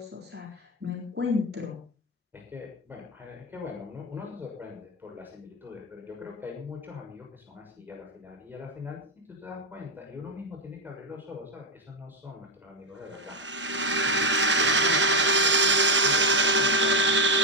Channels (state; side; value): normal; both; correlation 0.07